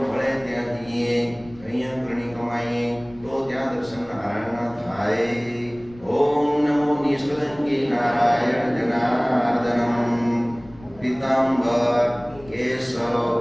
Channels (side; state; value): left; noise; rumble, 22 dB below the sound